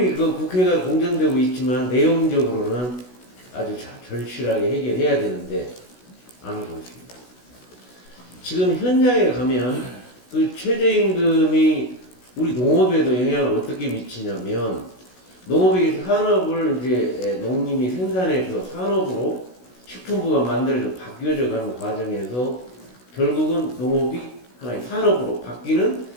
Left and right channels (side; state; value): right; late; 16 ms